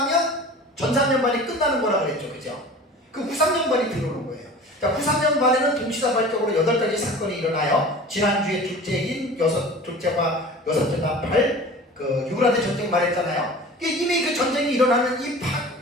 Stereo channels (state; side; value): normal; both; correlation 0.40